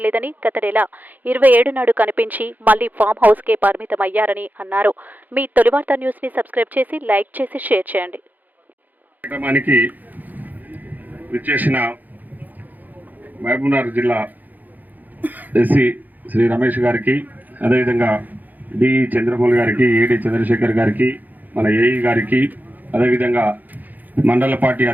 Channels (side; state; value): left; late; 0.083 ms